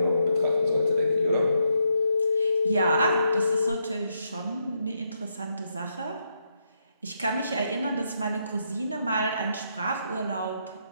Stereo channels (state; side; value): inverted; both; correlation -0.79